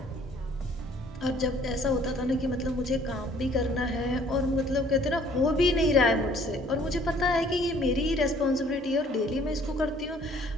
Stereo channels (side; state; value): both; normal; correlation 0.58